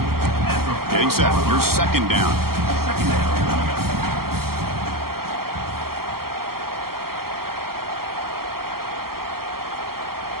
Getting set. Your second down.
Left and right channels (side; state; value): left; late; 0.93 ms